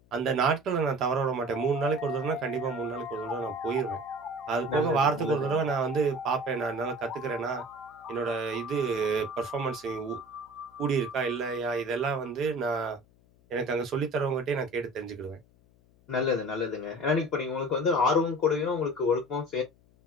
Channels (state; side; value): noise; left; hum, 30 dB below the sound